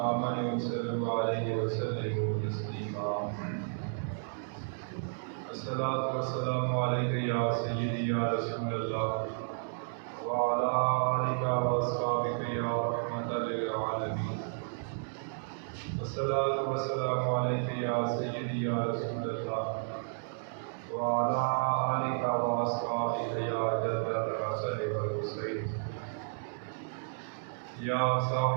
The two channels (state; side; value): silent; left; digital silence